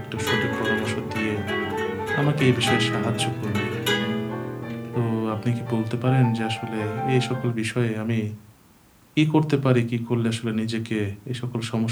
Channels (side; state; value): both; identical; correlation 1.00